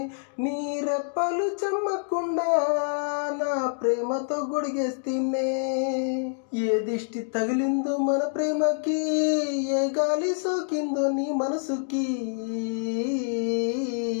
నీ రెప్పలు చెమ్మకుండా నా ప్రేమతో గొడిగేస్తేనే. ఏ దిష్టి తగిలిందో మన ప్రేమకి, ఏ గాలి సోకిందో నీ మనసుకి,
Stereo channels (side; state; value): right; silent; digital silence